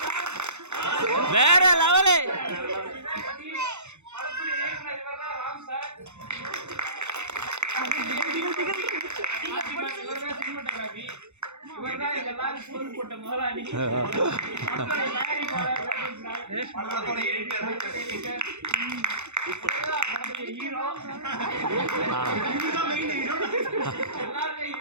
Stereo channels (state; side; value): late; left; 0.82 ms